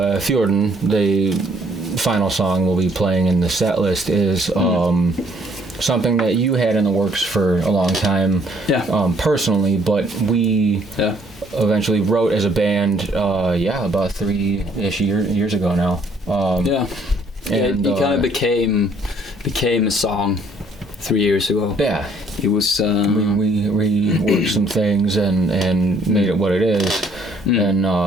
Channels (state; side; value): normal; both; correlation 0.63